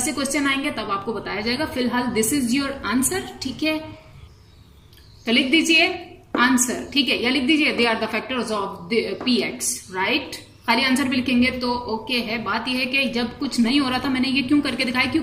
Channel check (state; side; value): identical; both; correlation 1.00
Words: क्वेश्चन आएंगे तब आपको बताया जाएगा। फिलहाल दिस इज योर आंसर, ठीक है। तो लिख दीजिए आंसर, ठीक है, या लिख दीजिए they are the factors of px, right. खाली आंसर भी लिखेंगे तो ओके है। बात यह है कि जब कुछ नहीं हो रहा था मैंने ये क्यों करके दिखाया,